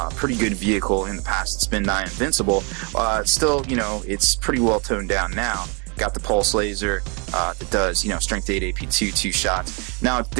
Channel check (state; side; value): quieter; left; 33.4 dB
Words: pretty good vehicle in the past. It's been nigh invincible. Still, it's pretty well toned down now. Got the Pulse Laser that does, Strength 8 AP2, 2 shots. Now,